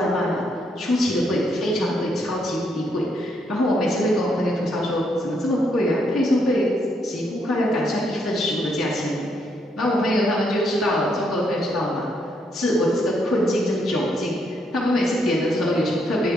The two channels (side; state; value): both; normal; correlation 0.75